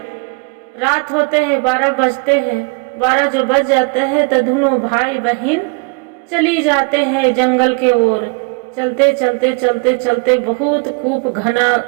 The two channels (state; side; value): quieter; left; 33.3 dB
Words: रात होते हैं 12 बजते हैं, 12 जो बज जाते हैं तो दोनों भाई बहन चली जाते हैं जंगल के ओर। चलते चलते चलते चलते बहुत खूब घना